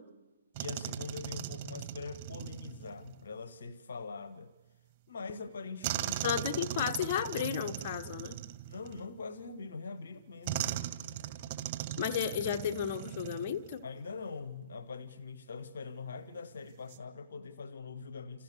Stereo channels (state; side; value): inverted; both; correlation -0.45